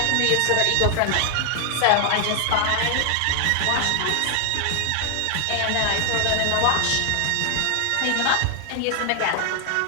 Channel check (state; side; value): different; both; correlation 0.00